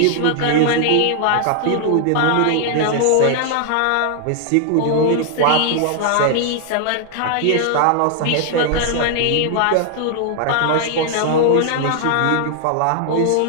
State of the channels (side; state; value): both; different; correlation 0.00